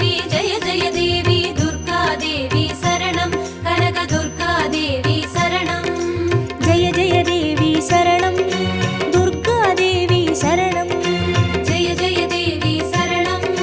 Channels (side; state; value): both; identical; correlation 1.00